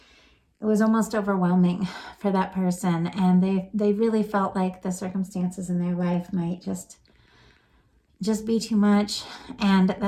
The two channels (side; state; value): both; identical; correlation 1.00